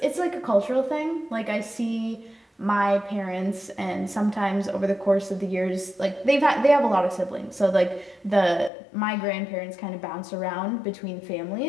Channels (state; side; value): drops out; right; at 8.7 s